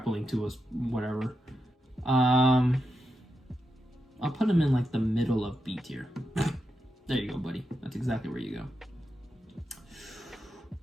to us, whatever. I'll put him in like the middle of B tier. There you go, buddy. That's exactly where you go.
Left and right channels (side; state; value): both; normal; correlation 0.86